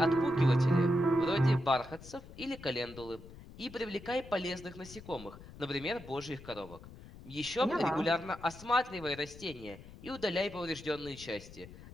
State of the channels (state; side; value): noise; left; rumble, 17 dB below the sound